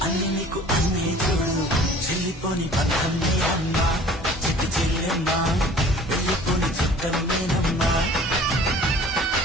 అన్ని నీకు అన్నీ చూడు, చెల్లిపోని బంధం నే అమ్మా, చిట్టి చెల్లెమ్మా, వెళ్ళిపోని చుట్టం నేనమ్మా.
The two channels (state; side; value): normal; both; correlation 0.48